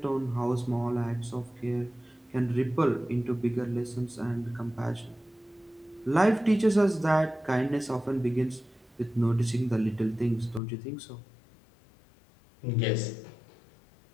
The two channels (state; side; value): drops out; right; at 10.6 s